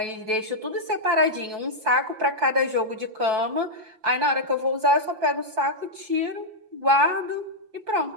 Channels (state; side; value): late; left; 5.8 ms